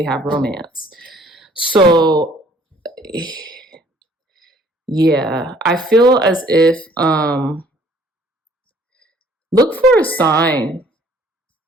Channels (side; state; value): both; normal; correlation 0.58